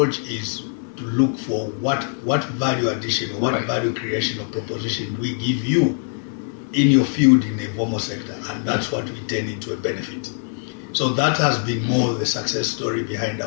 is to look for what value addition or what value creation or proposition we give you in your field in the informal sector, and that's what we turn into a benefit. So that has been more the success story behind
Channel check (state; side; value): silent; right; 63 dB below the other